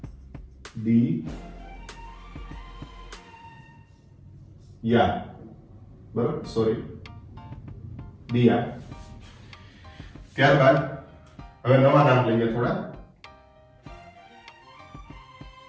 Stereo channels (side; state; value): both; identical; correlation 1.00